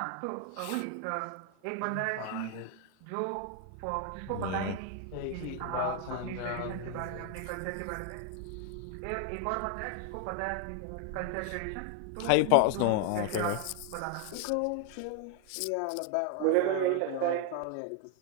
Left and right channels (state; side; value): different; both; correlation 0.00